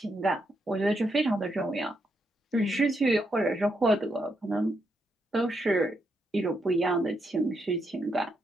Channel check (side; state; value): both; normal; correlation 0.80